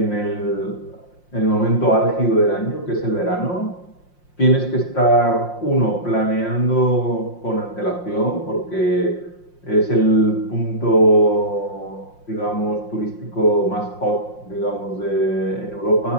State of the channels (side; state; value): right; late; 5.6 ms